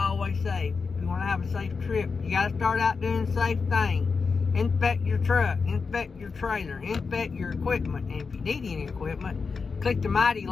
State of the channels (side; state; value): right; quieter; 4.9 dB